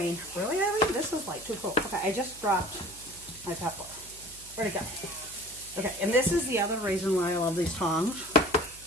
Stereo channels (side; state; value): right; noise; hum, 21 dB below the sound